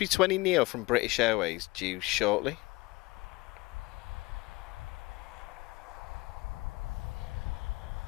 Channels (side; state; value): right; quieter; 22.7 dB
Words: from British Airways due shortly.